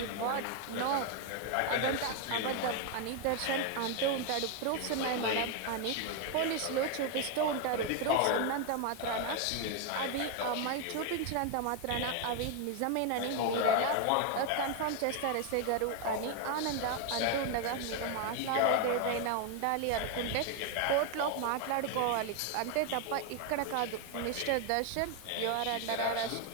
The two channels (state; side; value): different; both; correlation 0.01